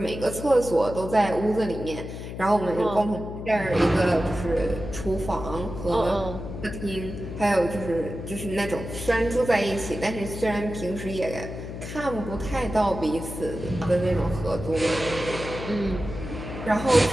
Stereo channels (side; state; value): left; noise; hum, 9 dB below the sound